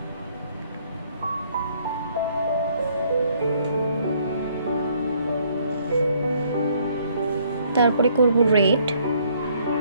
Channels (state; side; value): inverted; both; correlation -0.66